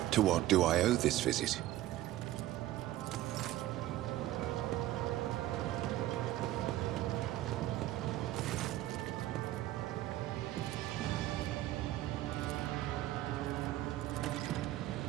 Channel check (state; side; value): quieter; left; 14.7 dB